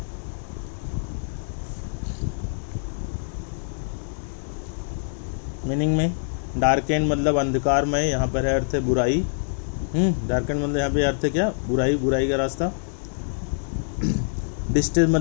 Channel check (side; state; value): right; silent; digital silence